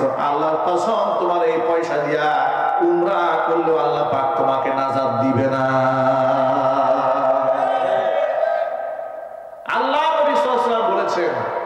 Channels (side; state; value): both; identical; correlation 1.00